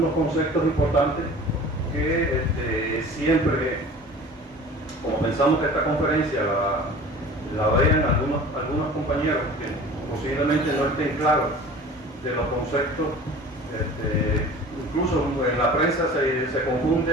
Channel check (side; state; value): both; normal; correlation 0.42